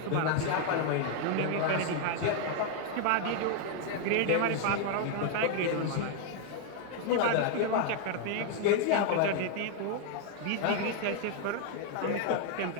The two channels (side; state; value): both; different; correlation 0.00